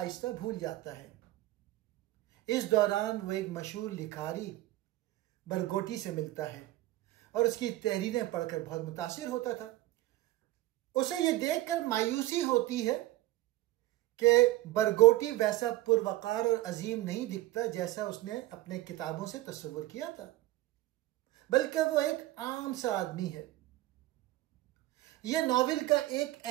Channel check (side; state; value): left; quieter; 16.8 dB